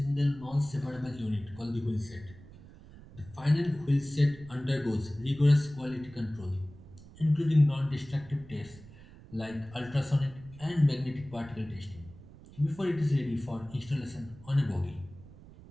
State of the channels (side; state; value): right; noise; rumble, 19 dB below the sound